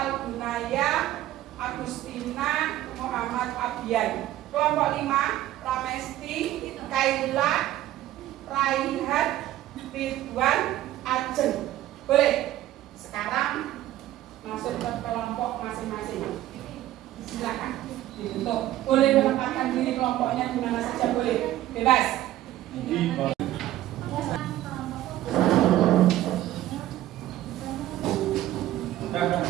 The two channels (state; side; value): quieter; left; 14.2 dB